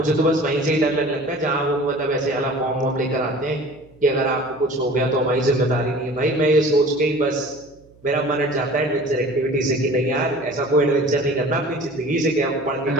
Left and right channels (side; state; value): right; noise; hum, 28 dB below the sound